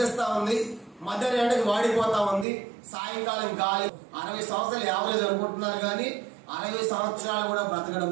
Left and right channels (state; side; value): drops out; left; at 2.5 s